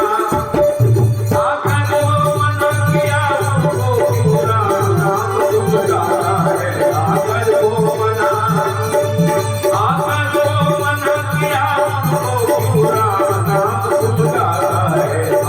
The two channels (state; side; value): identical; both; correlation 1.00